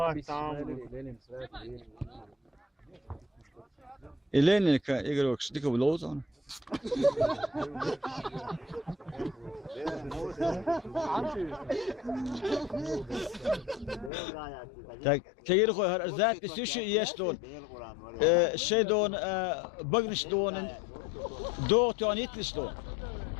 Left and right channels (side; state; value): right; drops out; at 14.1 s